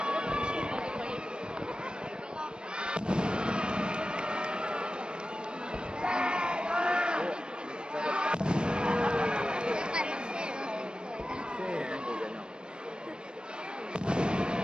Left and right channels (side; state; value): left; late; 0.052 ms